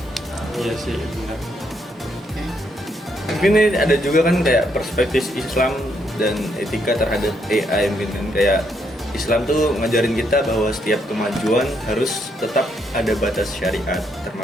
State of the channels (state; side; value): normal; both; correlation 0.75